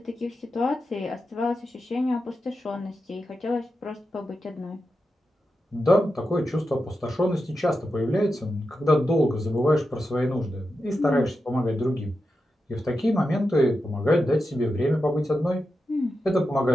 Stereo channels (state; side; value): normal; both; correlation 0.89